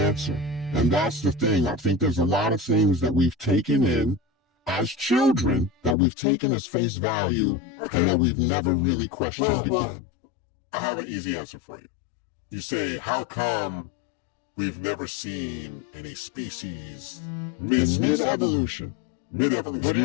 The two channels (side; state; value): right; drops out; at 6.0 s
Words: And that's the thing. I think there's a lot of things that we've taken in as children, that we've taken as face value, and that we've never really questioned again. I have an easy answer for you. You say, how come we've never seen any species mid-evolution? Mid-evolution. What are you